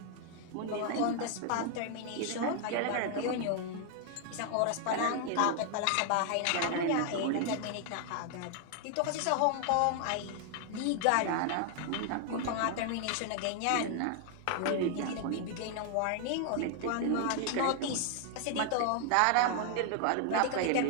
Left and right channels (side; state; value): both; different; correlation 0.00